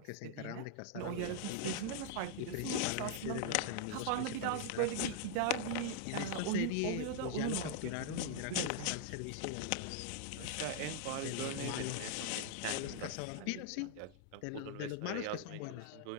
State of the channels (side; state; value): both; different; correlation -0.01